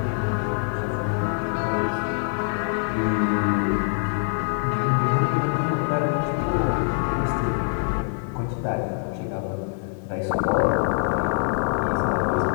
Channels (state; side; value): silent; right; 62 dB below the other